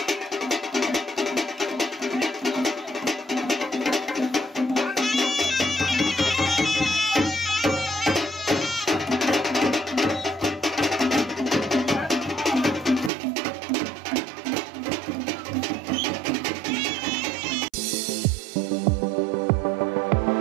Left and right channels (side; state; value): left; drops out; at 13.1 s